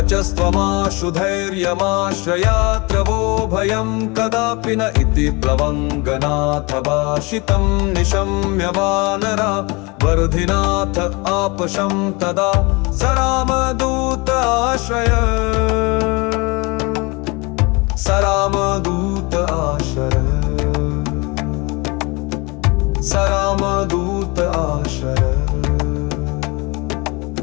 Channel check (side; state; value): right; quieter; 27.0 dB